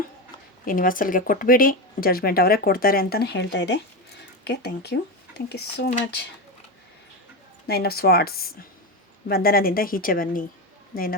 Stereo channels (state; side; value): normal; both; correlation 0.15